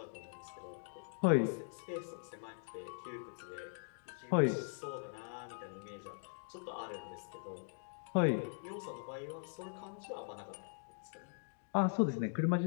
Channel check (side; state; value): right; silent; digital silence